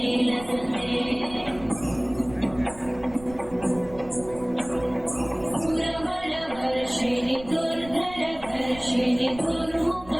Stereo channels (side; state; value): right; noise; rumble, 18 dB below the sound